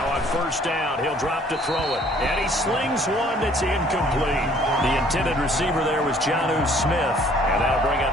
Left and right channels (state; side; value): normal; both; correlation 0.58